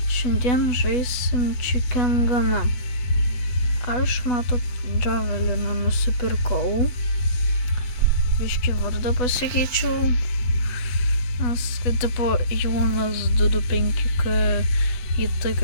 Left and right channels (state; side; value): late; right; 8.1 ms